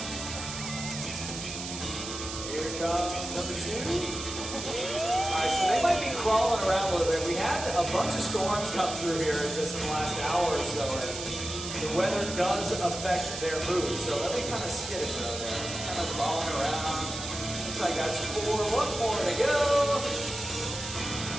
Number 2. Alright, so they might be crawling around a little bit. We had a bunch of storms come through here just in the last hour or so, and the weather does affect their mood. So let me kind of skittish out there. Kind of crawling around. Looks like that's 4. 1 more to go.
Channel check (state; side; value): noise; right; hiss, 7 dB below the sound